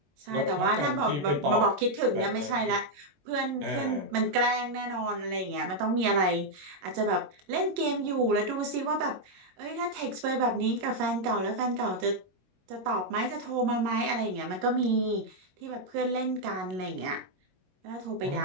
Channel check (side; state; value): left; late; 22 ms